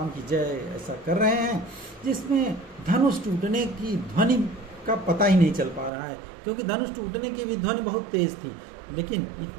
की जय ऐसा कर रहे हैं, जिसमें धनुष टूटने की ध्वनि का पता ही नहीं चल पा रहा है, क्योंकि धनुष टूटने की भी ध्वनि बहुत तेज थी, लेकिन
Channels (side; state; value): left; drops out; at 5.9 s